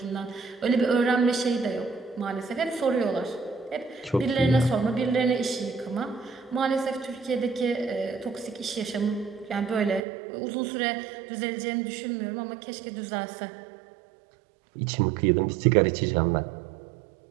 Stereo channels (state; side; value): drops out; left; at 10.0 s